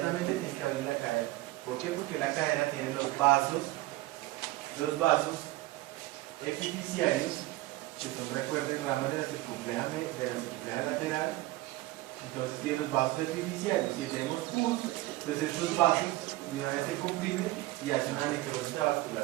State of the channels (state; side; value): quieter; left; 18.3 dB